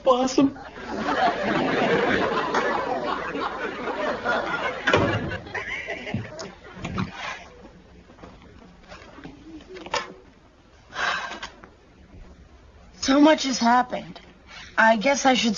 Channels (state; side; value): identical; both; correlation 1.00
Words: So much has happened. I guess I should